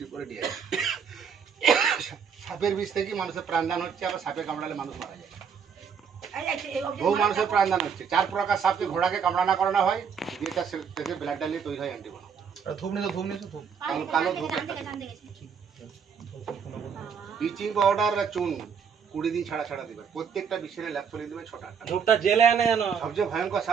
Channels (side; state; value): left; quieter; 6.7 dB